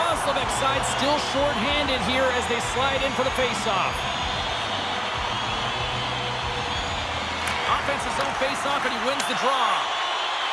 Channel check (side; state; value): both; identical; correlation 1.00